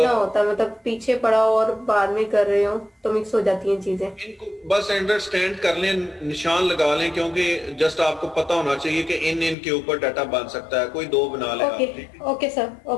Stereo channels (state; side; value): drops out; right; at 9.6 s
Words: ना होता, मतलब पीछे पड़ा और बाद में कर रहे हो तो मिक्स हो जाती हैं चीजें। इनको बस अंडरस्टैंड कर लें, निशान लगा लें, क्योंकि जस्ट आपको पता होना चाहिए कि इन के ऊपर डाटा बन सकता है। कोई दो बना लें आप, ठीक है? Okay sir,